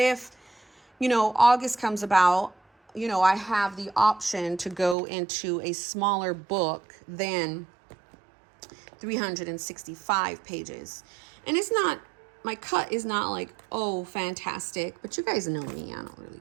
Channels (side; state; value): left; drops out; at 5.0 s